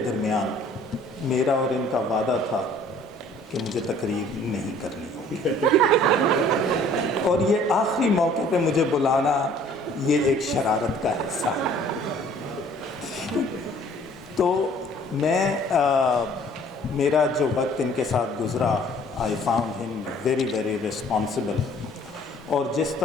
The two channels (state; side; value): normal; both; correlation 0.55